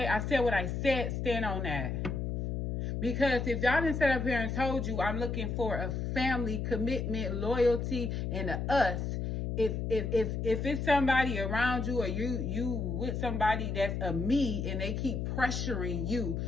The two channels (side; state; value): left; noise; hum, 2 dB below the sound